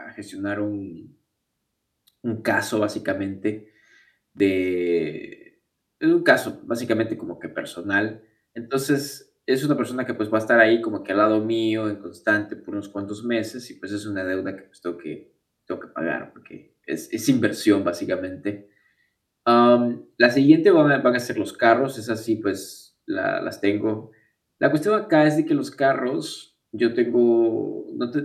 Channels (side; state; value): both; identical; correlation 1.00